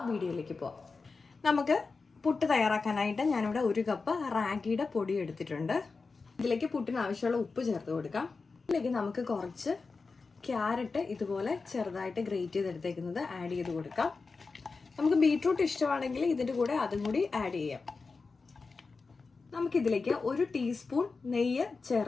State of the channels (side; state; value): right; quieter; 4.3 dB